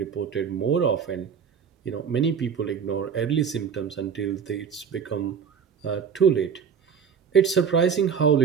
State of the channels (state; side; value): quieter; left; 6.9 dB